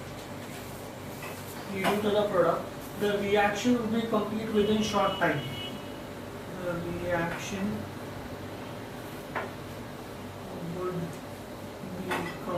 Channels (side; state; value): both; identical; correlation 1.00